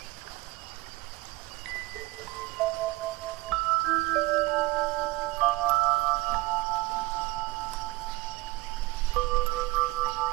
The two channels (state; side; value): quieter; left; 21.0 dB